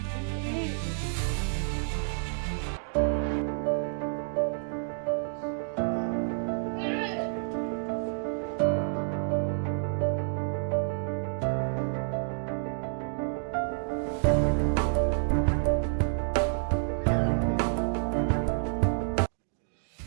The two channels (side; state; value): left; silent; digital silence